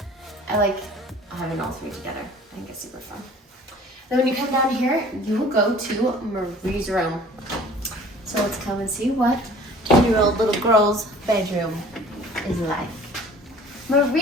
I like having all three together. I think it's super fun. Then when you come down here, you will go to Marie's room. So let's come and see what 10-year-old little girl's bedroom is like.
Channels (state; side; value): normal; both; correlation 0.49